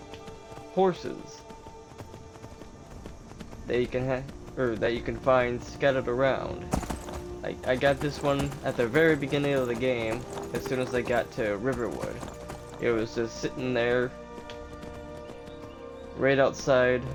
horses that you can that you can find scattered around. I got this one at the very beginning of the game as soon as I got to Riverwood. It was just sitting there right outside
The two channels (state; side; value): identical; both; correlation 1.00